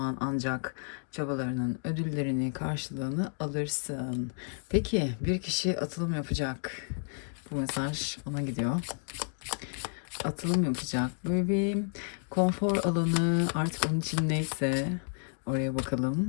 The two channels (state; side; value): silent; right; 57 dB below the other